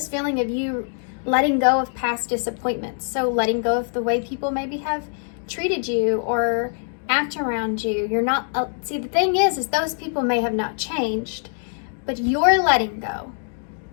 feeling of you letting go of past disappointments. So letting go of the way people maybe have treated you or act around you. You're not, see, the thing is those people may have not changed, but you're letting go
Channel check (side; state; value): right; silent; 58 dB below the other